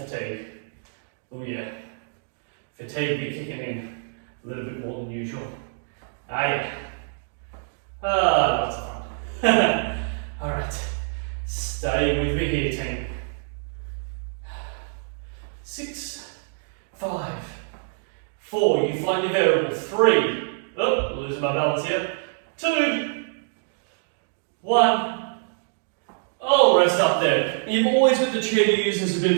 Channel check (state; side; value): silent; left; digital silence